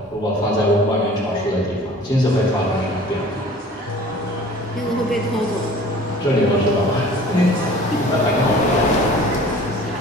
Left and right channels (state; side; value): normal; both; correlation 0.47